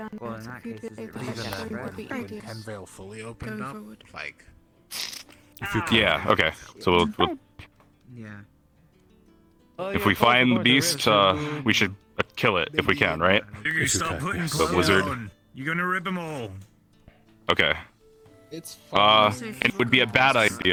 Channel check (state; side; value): identical; both; correlation 1.00